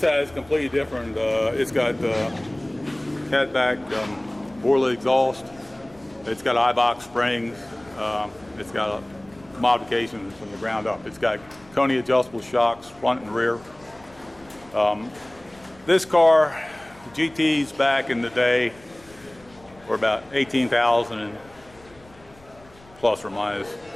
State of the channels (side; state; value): left; noise; rumble, 26 dB below the sound